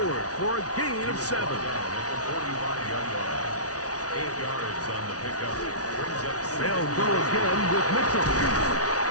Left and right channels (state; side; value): late; right; 0.68 ms